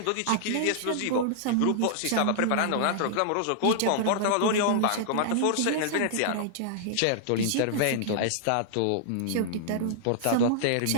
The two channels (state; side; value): different; both; correlation -0.01